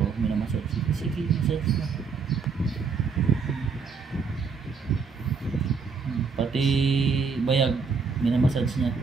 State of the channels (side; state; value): left; quieter; 5.3 dB